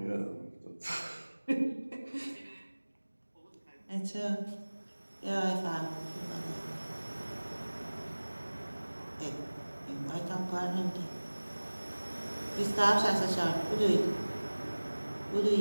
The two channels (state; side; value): inverted; both; correlation -1.00